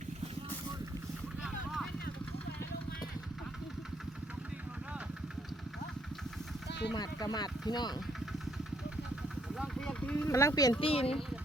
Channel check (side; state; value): both; normal; correlation 0.70